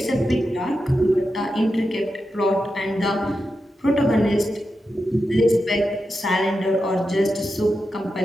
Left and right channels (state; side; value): normal; both; correlation 0.89